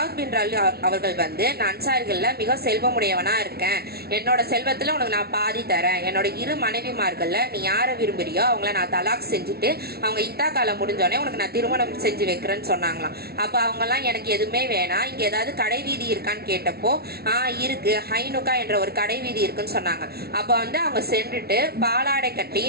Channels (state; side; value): late; left; 0.45 ms